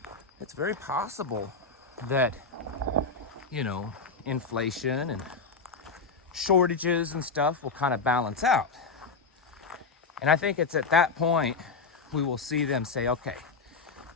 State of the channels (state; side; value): quieter; right; 4.5 dB